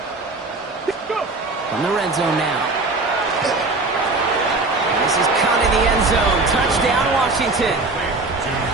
From the red zone now. And this is caught in the end zone. Touchdown, Washington.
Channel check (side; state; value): left; quieter; 3.4 dB